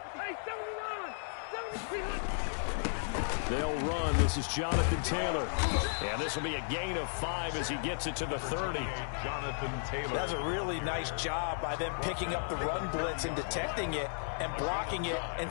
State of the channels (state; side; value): silent; right; digital silence